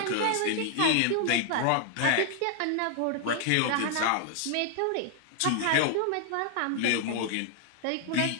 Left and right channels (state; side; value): different; both; correlation 0.00